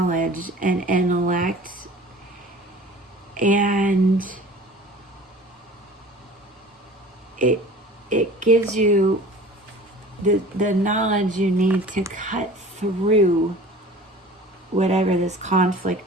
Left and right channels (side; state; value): both; normal; correlation 0.43